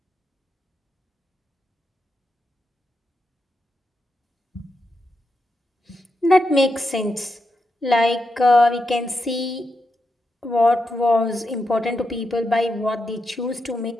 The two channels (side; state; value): both; normal; correlation 0.85